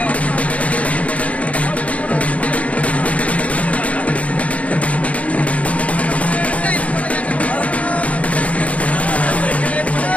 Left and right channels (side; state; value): right; late; 0.066 ms